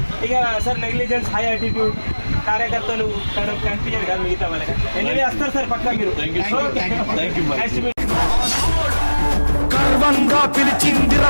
ఇక సార్ నెగ్లిజెన్స్, హై యాటిట్యూడ్, కార్యకర్తలు కనిపించారు కదా మిగతా వాళ్ళకి. ఎనివే వస్తారు సార్ పక్కా మీరు. గర్వంగా పిలిచిందిర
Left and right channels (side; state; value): both; inverted; correlation -1.00